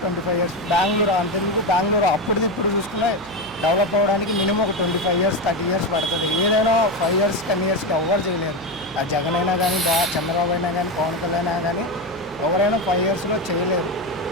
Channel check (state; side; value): noise; right; hum, 21 dB below the sound